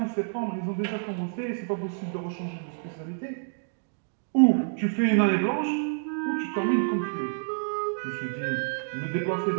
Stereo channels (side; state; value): left; silent; digital silence